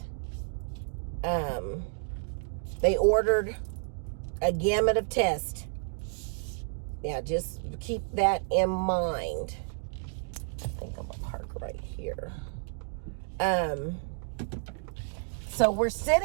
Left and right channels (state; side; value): silent; left; digital silence